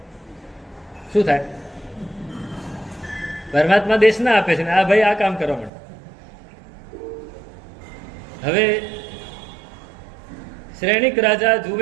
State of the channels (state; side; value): drops out; left; at 5.7 s